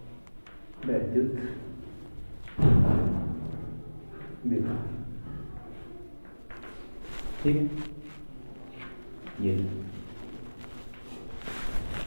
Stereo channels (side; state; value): both; inverted; correlation -1.00